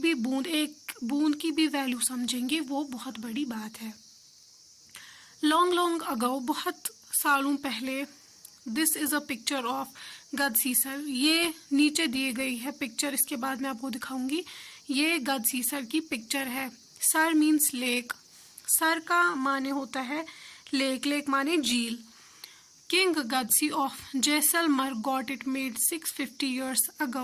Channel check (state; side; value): identical; both; correlation 1.00